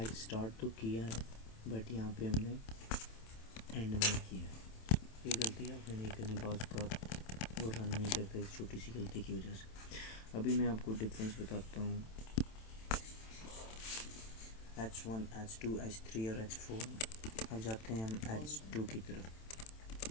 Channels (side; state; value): right; late; 27 ms